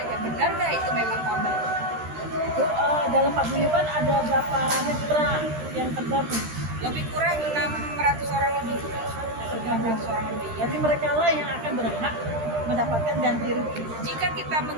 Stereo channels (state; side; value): late; left; 13 ms